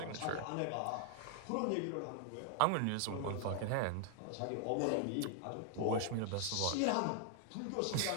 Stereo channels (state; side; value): different; both; correlation 0.00